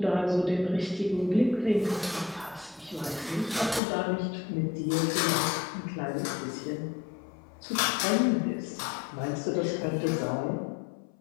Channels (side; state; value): right; drops out; at 3.8 s